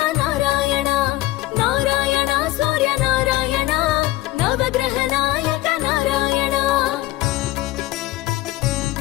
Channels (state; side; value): quieter; right; 17.0 dB